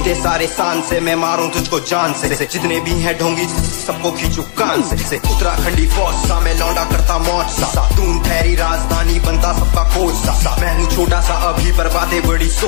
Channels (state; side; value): silent; right; digital silence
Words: सारे शान से मैं मारूं तुझको जान से जितने भी हैं ढोंगी सबको खींचू कान से। उत्तराखंडी फौज सा मैं लौंडा करता मौज सा दून ठहरी राजधानी बनता सबका कोच सा। मैं हूँ छोटा सा अभी पर बातें बड़ी